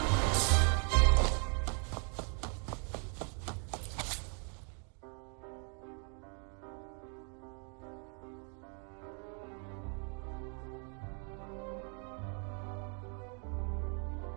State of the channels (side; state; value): left; quieter; 39.9 dB